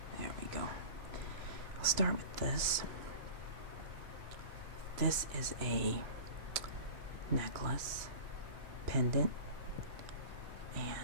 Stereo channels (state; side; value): late; left; 2.9 ms